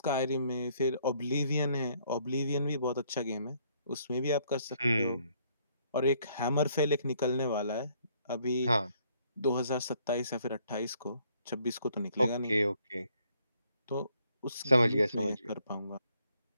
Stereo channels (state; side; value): inverted; both; correlation -0.67